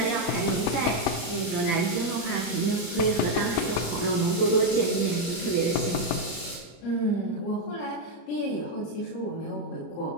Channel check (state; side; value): late; right; 34 ms